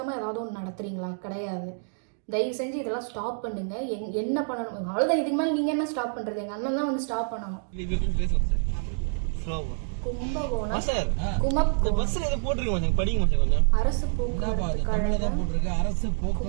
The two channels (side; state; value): left; silent; digital silence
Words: ஏதாவது ஒன்று நடத்துறீங்களா? கிடையாது. தயவு செஞ்சு இதெல்லாம் ஸ்டாப் பண்ணுங்க. என்ன பண்ணணும் அவ்வளோதான். இதுக்கு மேலே நீங்கள் என்ன ஸ்டாப் பண்ணுறது? எங்கள் அண்ணன் தான் வந்து ஸ்டாப் பண்ணணும். கும்பகோணம் அரசு போக்குவரத்து